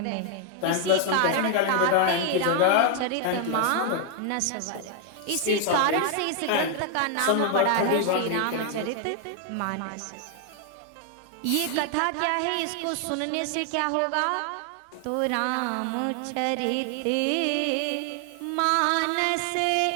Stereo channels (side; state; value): both; different; correlation 0.00